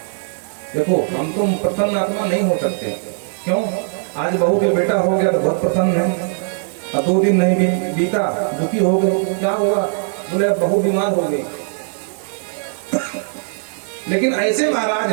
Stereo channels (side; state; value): left; silent; 66 dB below the other